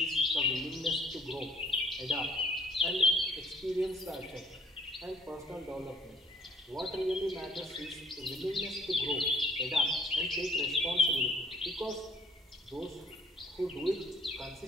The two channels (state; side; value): normal; both; correlation 0.58